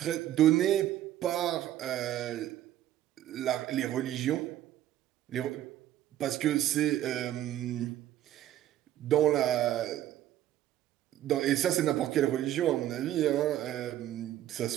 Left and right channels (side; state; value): left; quieter; 12.8 dB